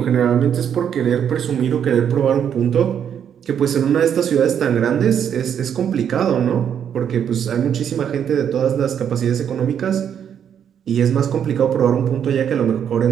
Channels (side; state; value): left; quieter; 8.6 dB